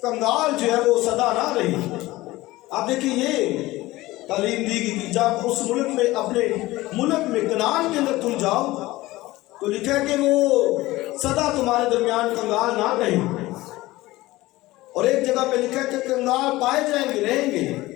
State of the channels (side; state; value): right; quieter; 18.5 dB